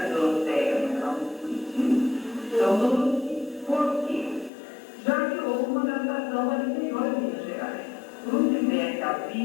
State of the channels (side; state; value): right; drops out; at 4.5 s